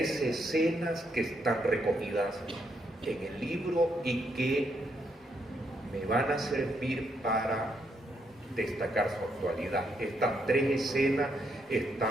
escenas que están recogidas en el libro y que me van a servir para destacar su actualidad. Estas 3 escenas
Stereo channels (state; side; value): normal; both; correlation 0.76